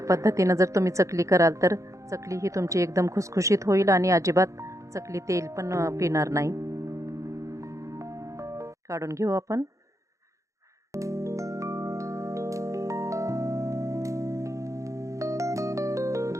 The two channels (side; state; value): left; late; 0.15 ms